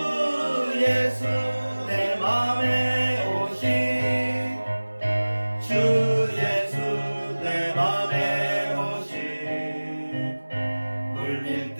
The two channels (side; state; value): both; inverted; correlation -1.00